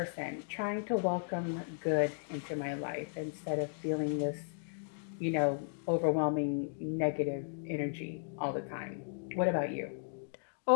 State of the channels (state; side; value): silent; right; digital silence